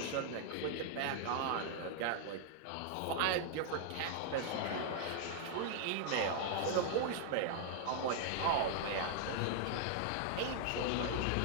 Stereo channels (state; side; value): different; both; correlation -0.01